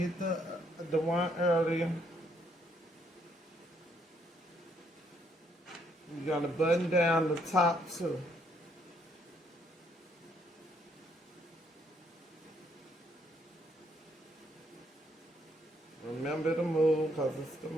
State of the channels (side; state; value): both; normal; correlation 0.71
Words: the one earlier. You're going to button down the top too. Remember to move because it's the